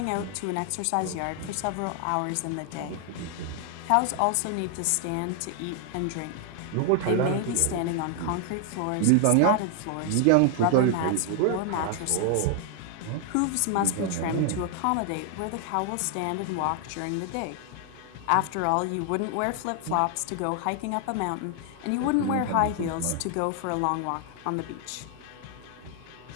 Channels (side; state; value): both; different; correlation 0.00